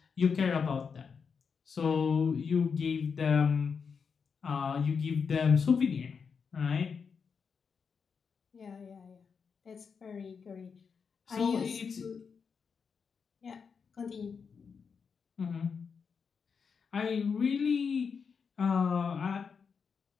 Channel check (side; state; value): right; quieter; 5.9 dB